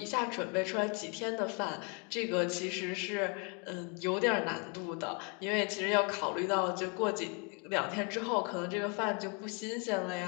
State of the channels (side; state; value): right; quieter; 34.8 dB